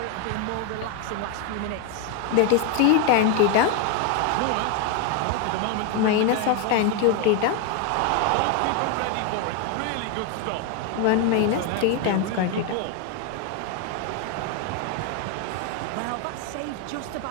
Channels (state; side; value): different; both; correlation 0.01